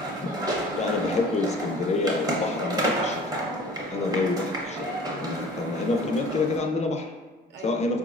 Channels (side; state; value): both; normal; correlation 0.46